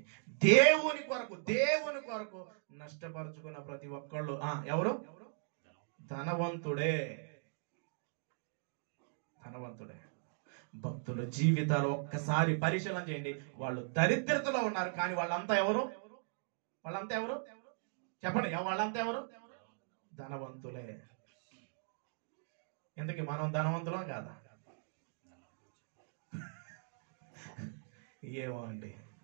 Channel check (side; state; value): left; silent; digital silence